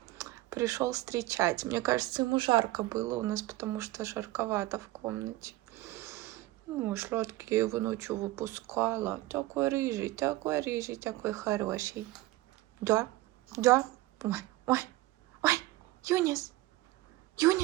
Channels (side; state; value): left; quieter; 18.1 dB